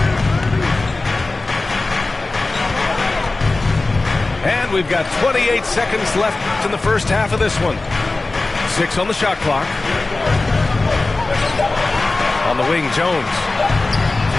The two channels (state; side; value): quieter; right; 3.3 dB